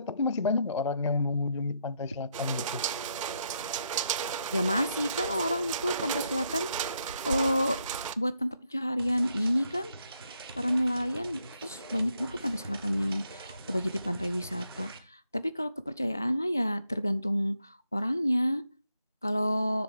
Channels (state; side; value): inverted; both; correlation -0.78